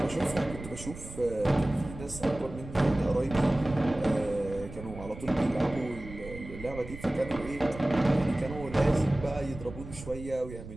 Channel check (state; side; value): noise; right; rumble, 13 dB below the sound